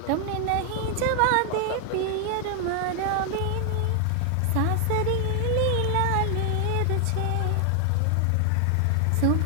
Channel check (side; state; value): both; different; correlation 0.00